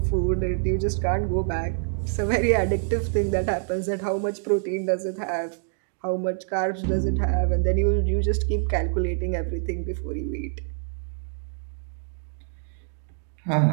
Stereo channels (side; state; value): left; silent; digital silence